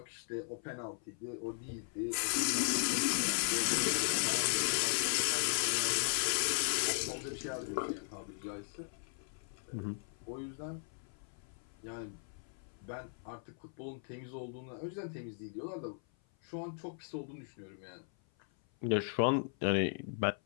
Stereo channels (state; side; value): silent; right; 53 dB below the other